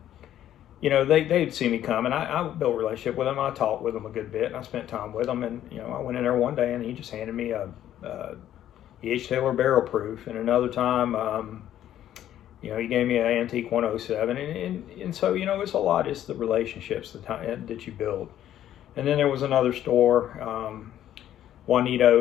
they'd see me come, and I built a relationship with them. I talked with them a good bit, and I spent time with them. And I went in there one day, and he just handed me a E.H. Taylor Barrel Proof, and another time he gave me an Antique 107, and so it's a lot. It's the relationships that you build. And then there was another store,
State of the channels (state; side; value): quieter; right; 11.7 dB